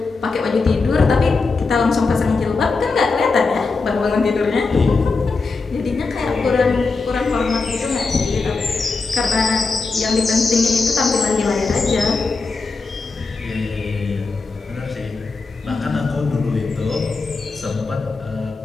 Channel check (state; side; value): quieter; right; 4.1 dB